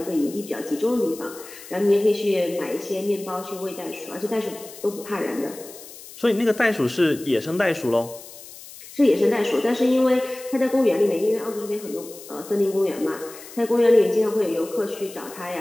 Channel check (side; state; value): left; noise; hiss, 17 dB below the sound